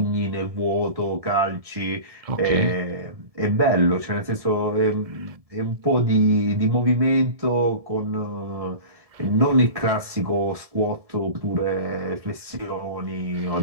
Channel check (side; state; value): left; late; 1.7 ms